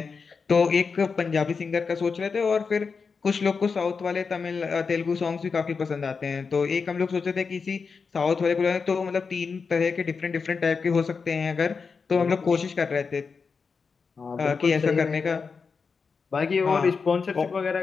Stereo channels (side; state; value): right; quieter; 5.2 dB